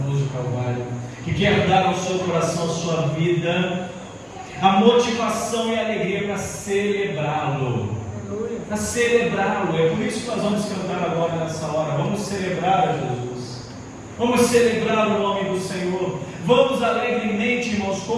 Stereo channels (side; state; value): both; identical; correlation 1.00